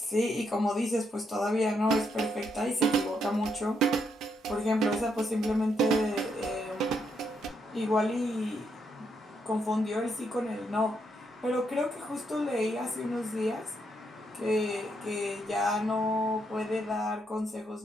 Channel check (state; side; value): normal; both; correlation 0.77